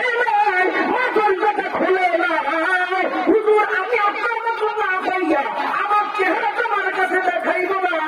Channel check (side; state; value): both; identical; correlation 1.00